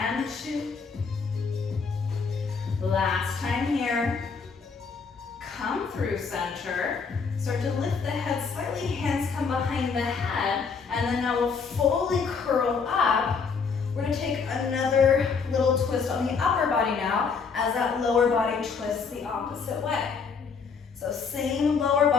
2. Last time here. Come through center. Start to lift the head slightly. Hands come behind the head. And then now we'll fully curl up. We're going to take another little twist on the upper body now as that lower body twists the opposite way. So same lower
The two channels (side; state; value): right; quieter; 5.4 dB